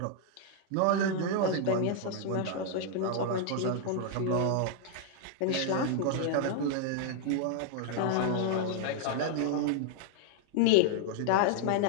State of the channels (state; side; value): different; both; correlation 0.00